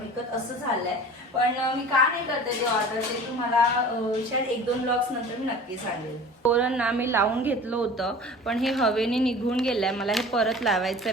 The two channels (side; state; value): both; normal; correlation 0.41